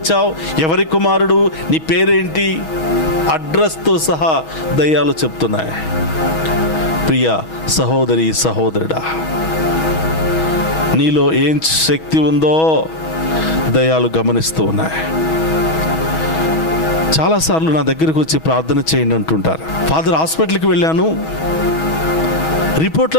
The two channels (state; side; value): late; right; 6.2 ms